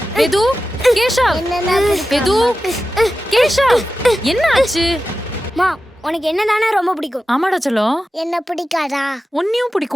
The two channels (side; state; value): both; normal; correlation 0.93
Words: எது கேஷவ் என்னன்னா பிடிக்கும்? எது கேஷவ் என்ன ஆச்சு? மா உனக்கு என்னதானே ரொம்ப பிடிக்கும்? ஆமாடா செல்லம். என்ன பிடிக்காதா? உன்னையும்